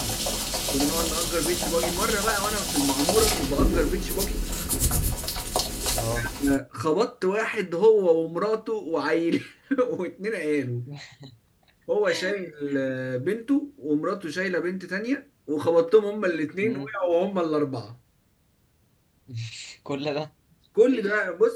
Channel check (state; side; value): identical; both; correlation 1.00